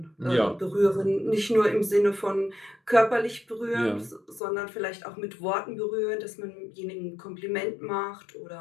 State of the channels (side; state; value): right; drops out; at 4.4 s